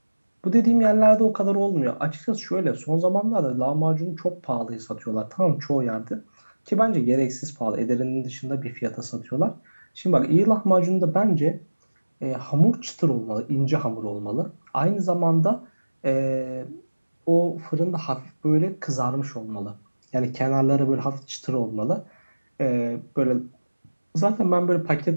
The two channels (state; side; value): inverted; both; correlation -1.00